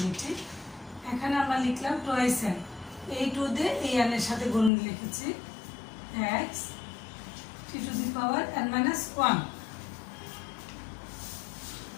এখানে আমরা লিখলাম টুয়াইস n, এই 2 দিয়ে এই n এর সাথে গুণ লিখেছি x t to the power n minus 1।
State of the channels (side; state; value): right; drops out; at 4.7 s